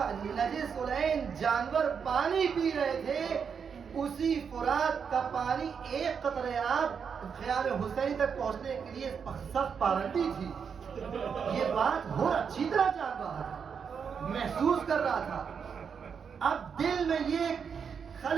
نجس العین جانور پانی پی رہے تھے اسی فرات کا پانی ایک قطرے آب خیال حسین تک پہنچنے کے لیے سخت پابندی تھی. یہ بات حر اچھی طرح جان رہا تھا, محسوس کر رہا تھا. اب دل میں یہ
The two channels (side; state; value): left; quieter; 6.6 dB